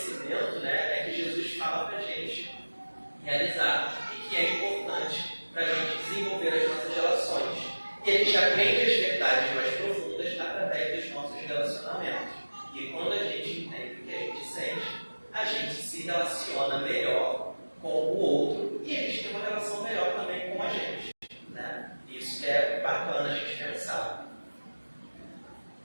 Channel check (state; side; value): inverted; both; correlation -1.00